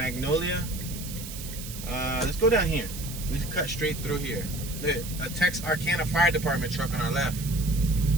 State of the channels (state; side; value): noise; right; hiss, 11 dB below the sound